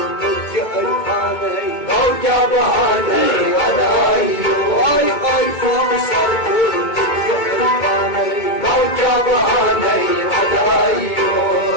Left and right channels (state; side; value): late; right; 2.2 ms